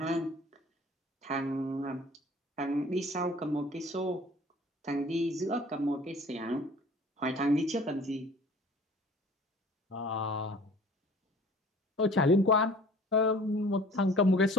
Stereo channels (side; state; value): both; normal; correlation 0.48